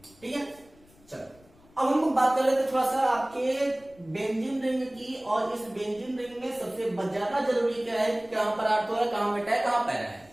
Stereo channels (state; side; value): noise; left; rumble, 28 dB below the sound